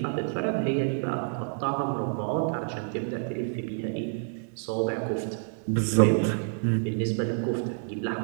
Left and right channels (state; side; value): silent; left; digital silence